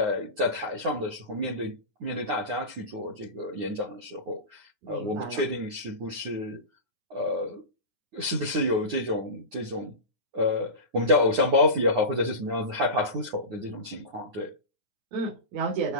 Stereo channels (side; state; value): left; late; 9.7 ms